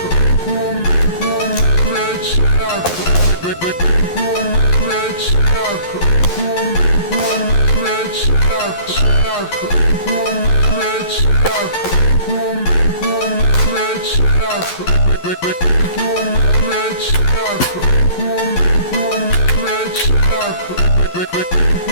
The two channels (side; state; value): right; late; 11 ms